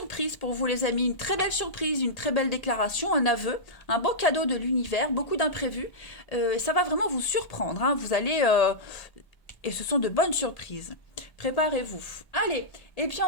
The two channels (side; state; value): right; late; 1.8 ms